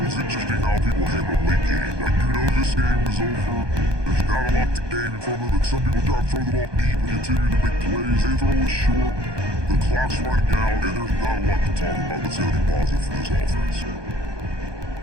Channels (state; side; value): late; left; 1.2 ms